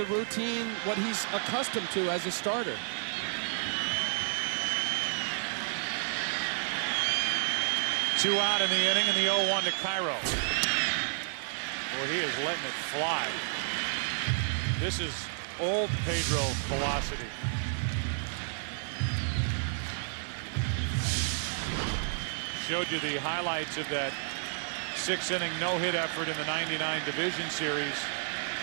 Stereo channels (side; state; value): left; silent; digital silence